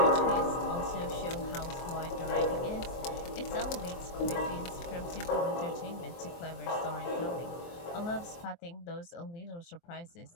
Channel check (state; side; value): late; right; 23 ms